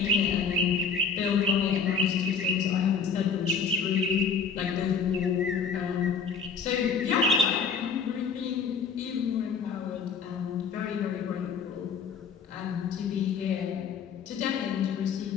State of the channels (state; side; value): quieter; right; 5.7 dB